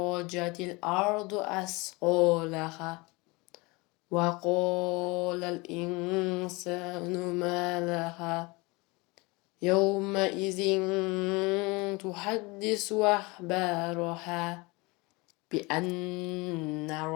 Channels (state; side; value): quieter; right; 25.4 dB